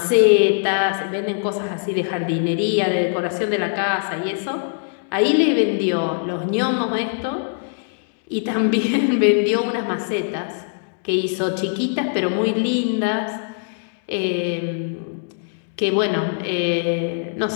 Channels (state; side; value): silent; right; digital silence